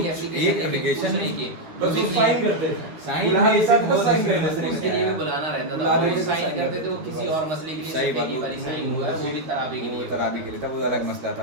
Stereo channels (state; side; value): late; left; 12 ms